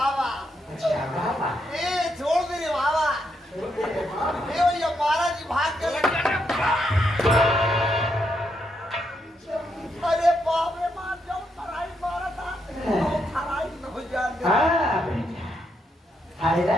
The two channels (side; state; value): both; normal; correlation 0.79